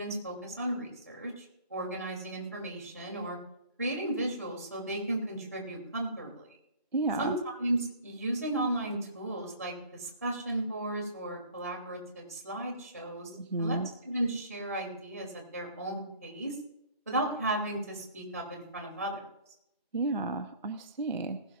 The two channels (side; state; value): both; inverted; correlation -0.50